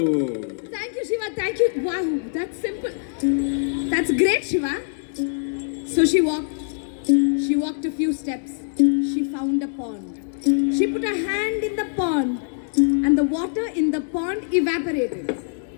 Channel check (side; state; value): right; silent; digital silence